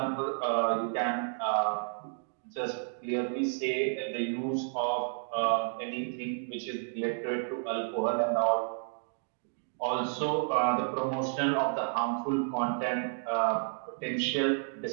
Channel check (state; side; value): silent; left; digital silence